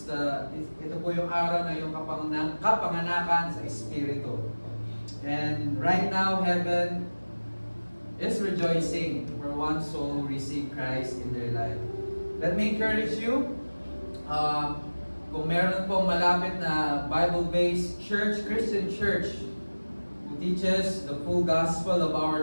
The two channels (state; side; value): inverted; both; correlation -1.00